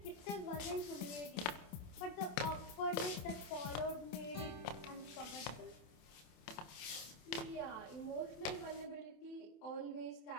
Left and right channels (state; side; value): late; right; 27 ms